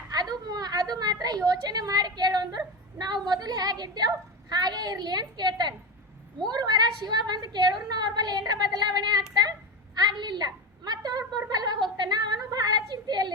ಅದು ಮಾತ್ರ ಯೋಚನೆ ಯೋಚನೆ ಮಾಡಿ ಕೇಳು ಅಂದ್ರು ನಾವು ಮೊದಲು ಹೇಗಿದ್ದೇವು ಹಾಗೆ ಇರ್ಲಿ ಅಂತ ಕೇಳ್ತಾನೆ. 3 ವಾರ ಶಿವ ಬಂದು ಕೇಳಿದ್ರು ಅವ್ರ ಬಲ್ಲಿ ಏನರ ಬದಲಾವಣೆ ಆಗ್ಲಿಲ್ಲ. ಮತ್ತೆ ಅವ್ರ ಬಲ್ವಾಗ ಹೋಗ್ತಾನ, ಅವನು ಬಹಳ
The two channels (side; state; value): both; normal; correlation 0.21